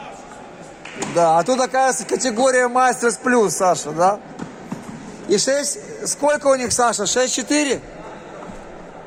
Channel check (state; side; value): identical; both; correlation 1.00